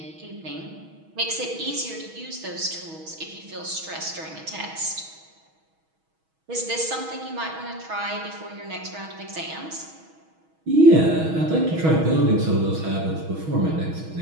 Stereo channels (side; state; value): left; late; 6.3 ms